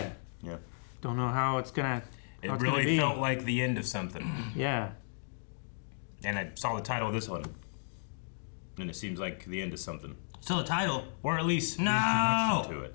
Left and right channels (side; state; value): right; silent; digital silence